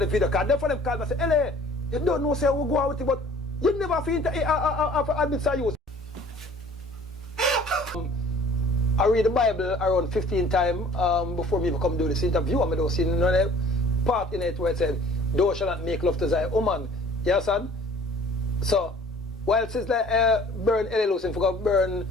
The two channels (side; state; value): both; normal; correlation 0.51